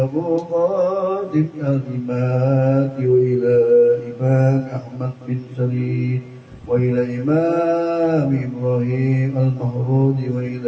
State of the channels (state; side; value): identical; both; correlation 1.00